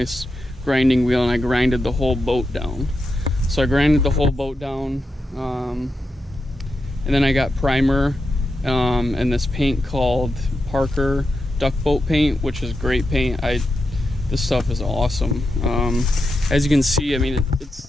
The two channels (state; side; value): normal; both; correlation 0.87